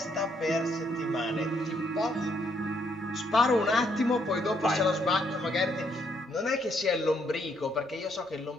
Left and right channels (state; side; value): normal; both; correlation 0.72